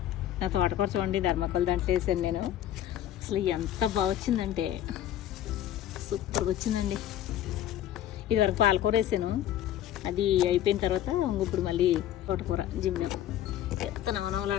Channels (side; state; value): right; quieter; 11.8 dB